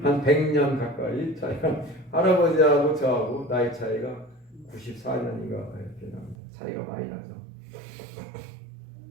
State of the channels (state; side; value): drops out; left; at 6.4 s